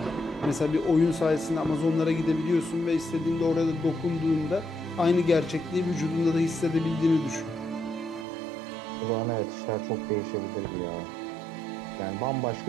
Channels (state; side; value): drops out; left; at 8.2 s